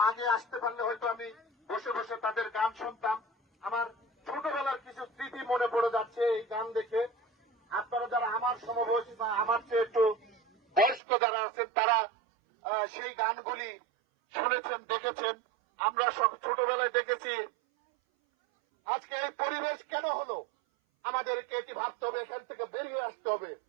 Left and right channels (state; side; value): drops out; left; at 11.0 s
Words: আগে আসতে পারলে হয়তো আমি বসে বসে তাদের গান শুনতাম। আমার ছোটবেলার কিছু স্মৃতি মনে পড়ে যাচ্ছে এই গান দেখে। আপনারা যারা আমার সমবয়সী বা আমার চেয়ে একটু বয়স্ক যারা আছেন তারা সেই গানগুলি শুনেছেন, দেখেছেন। আমরা সব ছোটবেলায় দেখেছি। আজকে এই পরিবেশ কেন হলো আমাদেরকে এটি ভাবতে হবে, এখান থেকে বেরিয়ে আসতে হবে।